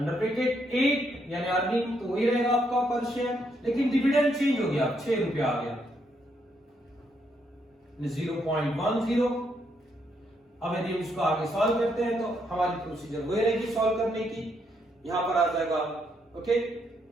ब्रैकेट 8 यानी अर्निंग तो वही रहेगा आपका पर शेयर, लेकिन डिविडेंड चेंज हो गया, 6 रुपए आ गया 0.10। अब यदि हम इसको आगे सॉल्व करते हैं तो हमारी प्रोसीजर वही रहेगी सॉल्व करने की। यहां पर आ जाएगा ओके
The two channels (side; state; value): both; normal; correlation 0.76